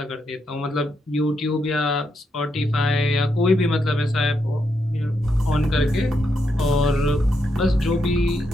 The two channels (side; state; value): both; normal; correlation 0.81